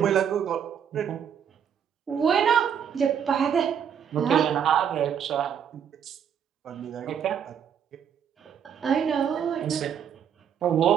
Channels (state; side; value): quieter; left; 8.2 dB